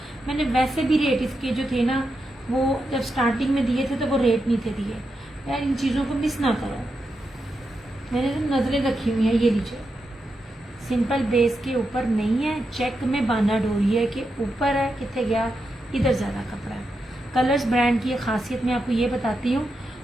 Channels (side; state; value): both; normal; correlation 0.86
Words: मैंने वैसे भी रेट इसके जो थे ना, वो जब स्टार्टिंग में दिए थे तो वो रेट नहीं थे दिए। यार इन चीज़ों को मिस ना करो, मैंने तो नज़रें रखी हुई हैं। ये लीजिए, सिंपल बेस के ऊपर नहीं है, चेक में बाना डोरी है कि ऊपर है, कितने गया इधर ज़्यादा कपड़ा है। कलर्स ब्रांड की खासियत मैं आपको ये बताती हूँ,